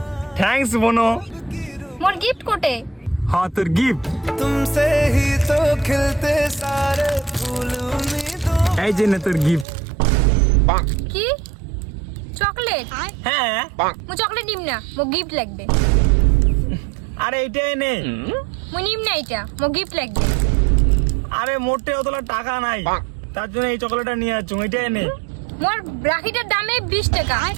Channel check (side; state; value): left; drops out; at 9.7 s